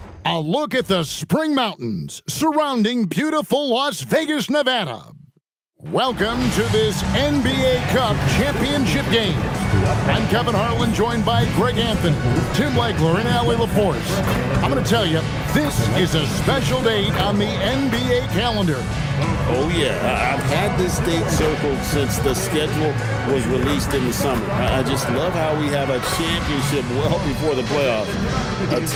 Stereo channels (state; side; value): identical; both; correlation 1.00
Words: a look at the spring mountains surrounding beautiful Las Vegas, Nevada. Welcome to this NBA Cup championship game. I'm Kevin Harlan, joined by Greg Anthony, Tim Legler, and Allie LaForce. I'm going to tell you, this is a special date on the NBA calendar. Oh, yeah. I've had this date circled since the schedule was released in the summer. I just love how we have a championship well before the playoffs. A